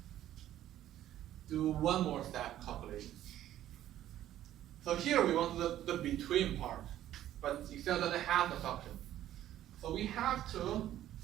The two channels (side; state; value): left; quieter; 12.5 dB